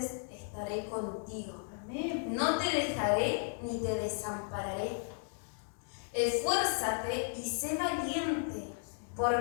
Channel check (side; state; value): right; silent; 55 dB below the other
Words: estaré contigo. Amén. No te dejaré ni te desampararé. Esfuérzate y sé valiente,